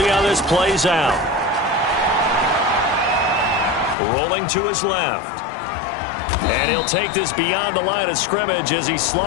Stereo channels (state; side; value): drops out; right; at 4.0 s